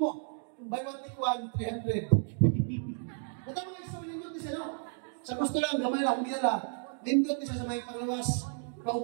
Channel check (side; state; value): left; silent; 56 dB below the other